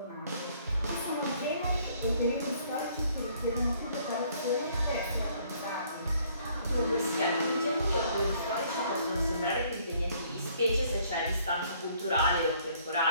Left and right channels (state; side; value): inverted; both; correlation -0.62